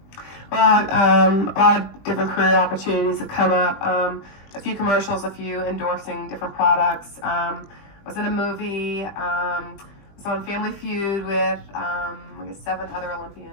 Well, a lot of different career opportunities have come up. A few commercials, a few endorsing different products. Was in a movie. Was on Family Feud with I guess 7 other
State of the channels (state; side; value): late; right; 20 ms